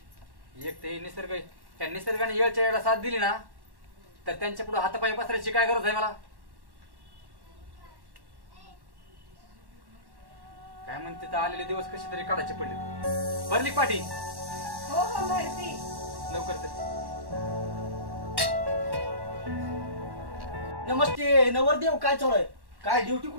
एक ते निसर्ग, त्या निसर्गाने येळच्या वेळेला साथ दिली ना, तर त्यांच्या पुढे हातापाय पसरायची काय गरज आहे मला? काय म्हणते तर आलेले दिवस कसे तरी काढायचे पडले. भरली का पाठी? हो हो भरती. लवकर चल. नमस्ते नवरदेव, काय चालू आहे? काय ड्युटी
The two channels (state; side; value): late; left; 1.1 ms